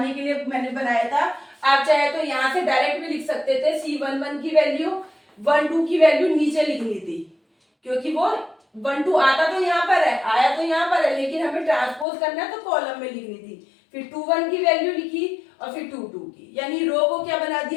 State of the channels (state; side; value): drops out; right; at 12.1 s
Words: के लिए मैंने बनाया था। आप चाहे तो यहाँ से डायरेक्ट भी लिख सकते थे, C11 की वैल्यू 1 2 की वैल्यू नीचे लिखनी थी, क्योंकि वो 1 2 आता तो यहाँ पर है, आया तो यहाँ पर है, लेकिन हमें ट्रांसपोज करना है तो कॉलम में लिखनी थी। फिर 2 1 की वैल्यू लिखी और फिर 2 2 की, यानी रो को क्या बना